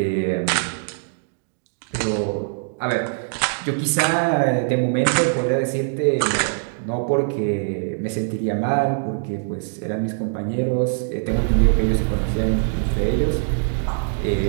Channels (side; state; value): left; silent; digital silence